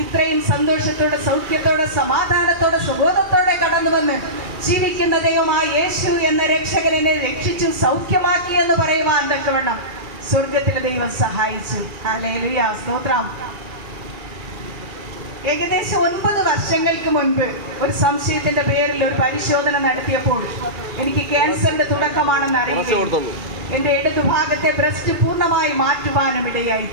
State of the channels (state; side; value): late; left; 2.4 ms